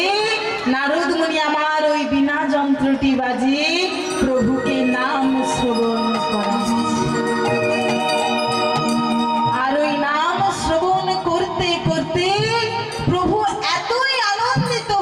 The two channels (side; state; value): both; identical; correlation 1.00